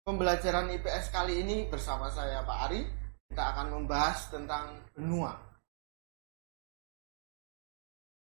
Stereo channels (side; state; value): left; silent; digital silence